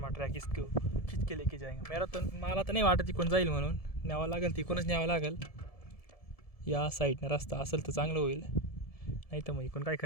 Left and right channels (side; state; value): right; late; 1.7 ms